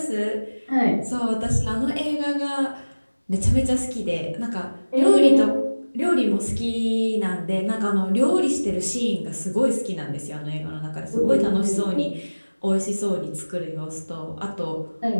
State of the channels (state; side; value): inverted; both; correlation -1.00